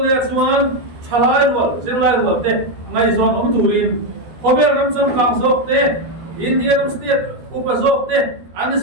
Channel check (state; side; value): late; left; 12 ms